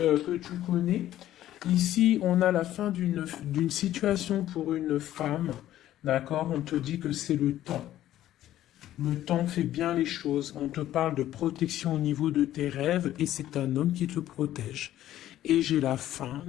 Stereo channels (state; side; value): quieter; right; 13.1 dB